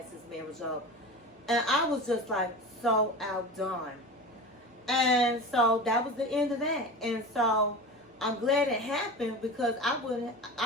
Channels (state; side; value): normal; both; correlation 0.30